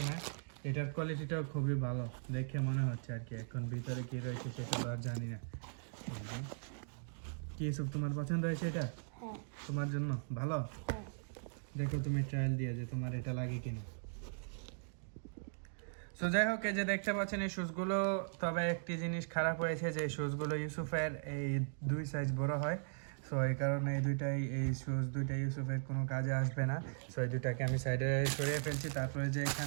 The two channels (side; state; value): left; silent; digital silence